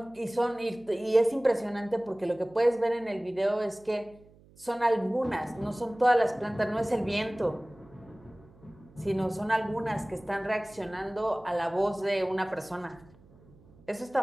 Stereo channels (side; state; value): right; noise; hum, 26 dB below the sound